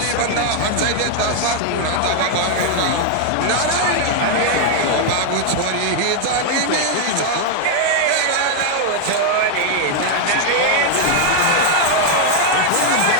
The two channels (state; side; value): different; both; correlation 0.00